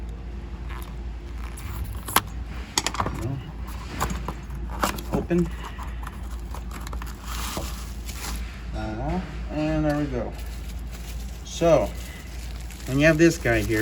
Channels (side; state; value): both; identical; correlation 1.00